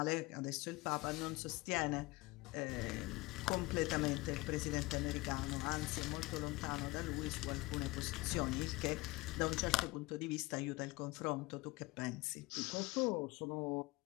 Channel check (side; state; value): right; quieter; 22.0 dB